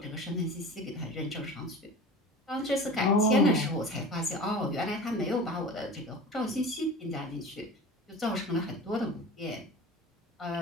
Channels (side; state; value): both; normal; correlation 0.36